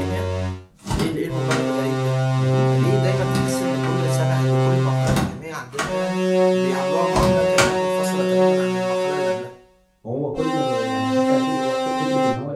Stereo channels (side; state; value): both; identical; correlation 1.00